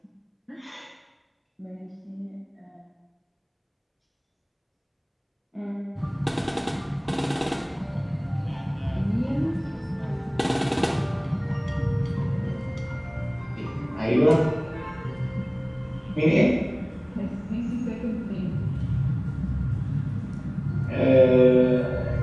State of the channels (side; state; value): both; identical; correlation 1.00